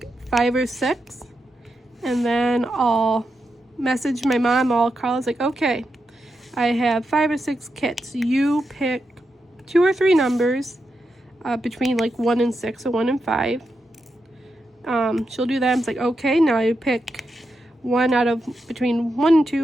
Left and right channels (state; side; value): normal; both; correlation 0.86